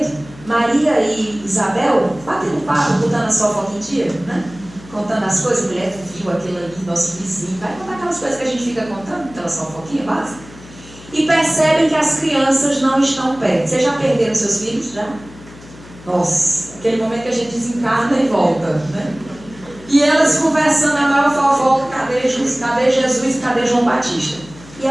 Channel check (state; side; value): noise; left; hum, 20 dB below the sound